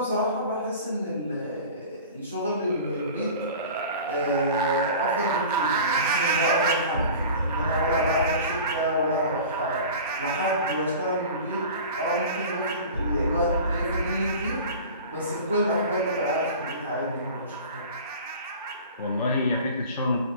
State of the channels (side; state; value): both; inverted; correlation -0.39